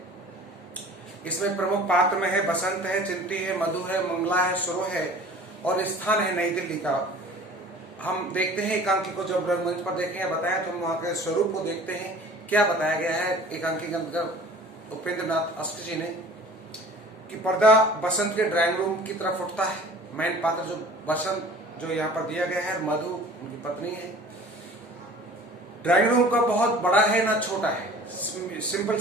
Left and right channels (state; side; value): normal; both; correlation 0.46